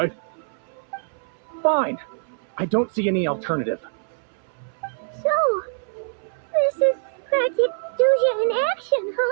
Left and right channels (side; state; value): left; silent; 62 dB below the other